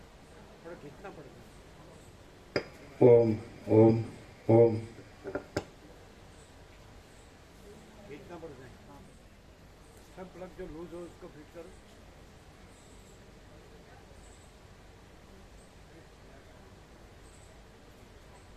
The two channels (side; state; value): both; identical; correlation 1.00